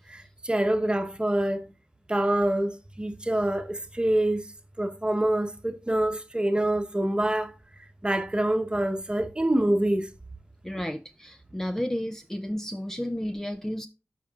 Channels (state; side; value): normal; both; correlation 0.97